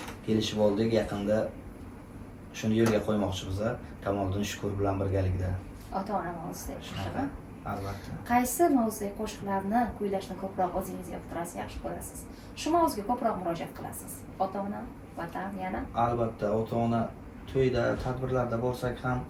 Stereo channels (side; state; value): both; identical; correlation 1.00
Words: Kelishib oldik, yaqinda shuni yo'lga qo'ymoqchimiz. Kamoliddin Shukur bilan birgalikda. Ota-ona mavzusidagi qo'shiqlar. Albatta. Qaysi mavzudagi qo'shiqlarni kuylashni ko'proq o'zingiz yoqtirasiz, yaxshi ko'rasiz? Shu mavzuga ko'proq murojaat qilasiz? Ota-ona, vatan yana? Albatta, ota-ona to'yda, tadbirlarda bo'lsak ham